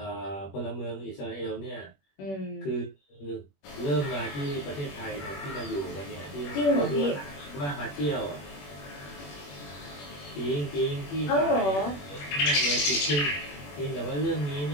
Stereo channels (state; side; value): late; right; 21 ms